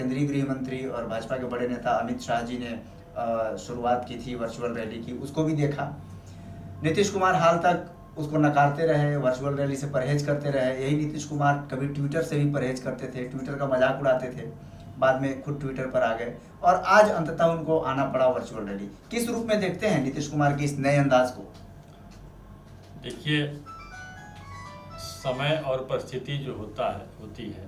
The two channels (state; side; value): identical; both; correlation 1.00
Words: गृह मंत्री और भाजपा के बड़े नेता अमित शाह जी ने शुरुआत की थी वर्चुअल रैली की, उसको भी देखा। नीतीश कुमार हाल तक उसको नकारते रहे, वर्चुअल रैली से परहेज करते रहे। यही नीतीश कुमार कभी ट्विटर से भी परहेज करते थे, ट्विटर का मजाक उड़ाते थे, बाद में खुद ट्विटर पर आ गए और आज अंततः उनको आना पड़ा वर्चुअल रैली। किस रूप में देखते हैं नीतीश कुमार के इस नए अंदाज को? देखिए, समय और परिस्थिति जो होती है